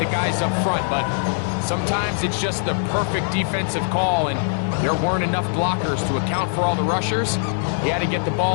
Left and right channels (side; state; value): right; silent; digital silence